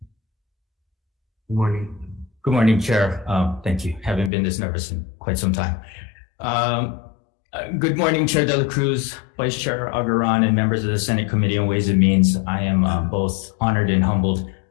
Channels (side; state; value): right; drops out; at 4.3 s